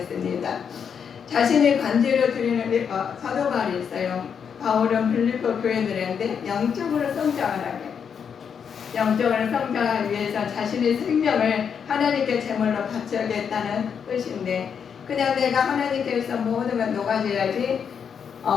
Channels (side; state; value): right; quieter; 7.1 dB